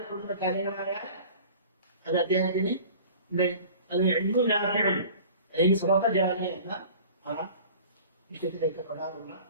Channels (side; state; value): both; inverted; correlation -0.44